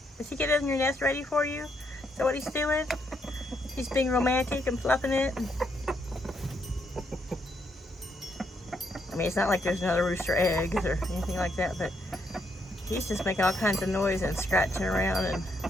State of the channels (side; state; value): both; normal; correlation 0.76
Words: Is he getting your nest ready for you? Is that what he's doing? He's being romantic and fluffing it? I mean, it's not like there's another rooster eggs or anything like that, but he's just making all kinds of noise and scratching around and